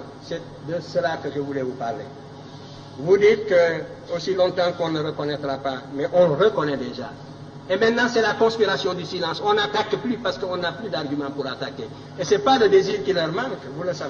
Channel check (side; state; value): both; identical; correlation 1.00